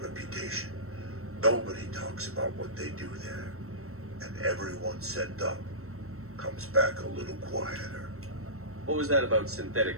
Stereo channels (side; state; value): left; late; 0.63 ms